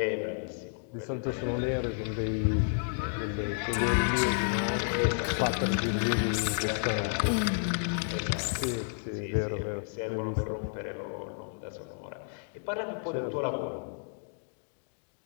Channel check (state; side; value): silent; right; digital silence